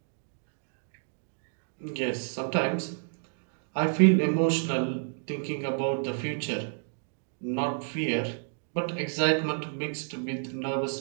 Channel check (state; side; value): silent; left; 58 dB below the other